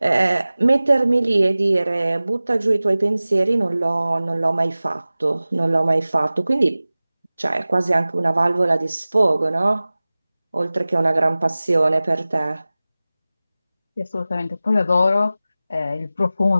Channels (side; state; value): both; inverted; correlation -0.97